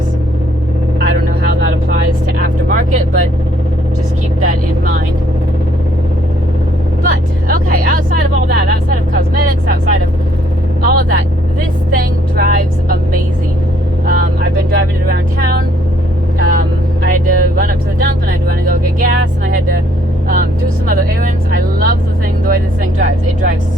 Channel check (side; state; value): both; normal; correlation 0.65